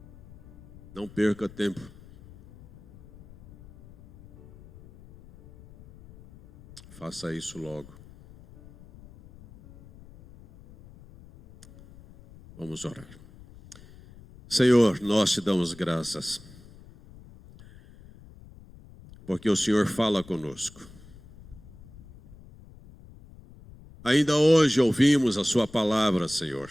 Não perca tempo. Faça isso logo. Vamos orar. Senhor, nós te damos graças, porque o Senhor fala conosco. Ainda hoje ouvimos a sua palavra, Senhor.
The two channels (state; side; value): noise; left; rumble, 22 dB below the sound